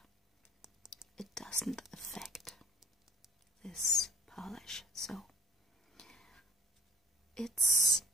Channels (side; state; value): both; normal; correlation 0.51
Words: it doesn't affect this polish. So it's